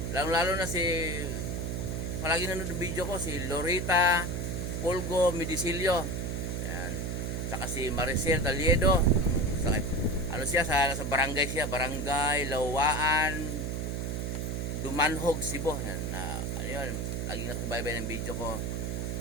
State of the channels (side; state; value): right; noise; hum, 2 dB below the sound